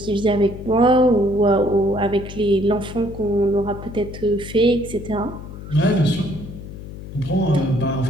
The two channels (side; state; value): left; noise; hum, 12 dB below the sound